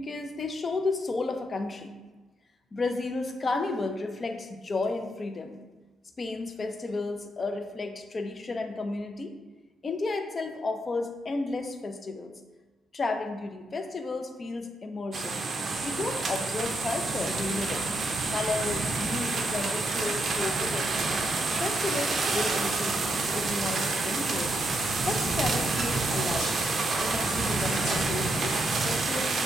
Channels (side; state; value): both; normal; correlation 0.79